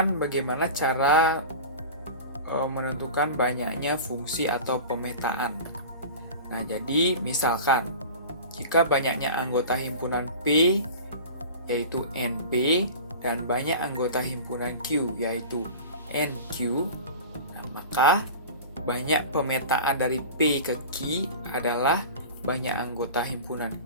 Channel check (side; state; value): both; inverted; correlation -0.35